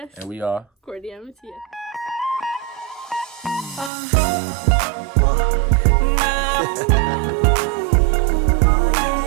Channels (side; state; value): left; drops out; at 3.9 s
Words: And we are Courtney and Mattias.